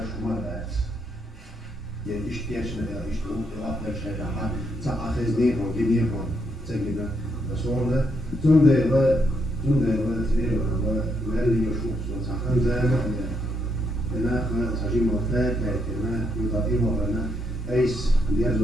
شو مالات يعني اشتياش لا اشتو اقدر شيء عن تاخذ نيفون دي نيفون تجينا بسوله تونده لا تريد ولا اللي يشوف صحن زي ما انا ساجي مرتاح كما يضيف ولا ايس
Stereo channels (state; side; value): normal; both; correlation 0.77